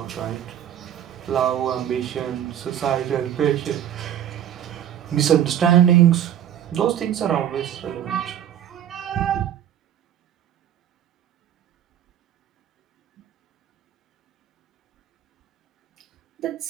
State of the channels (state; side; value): quieter; left; 10.4 dB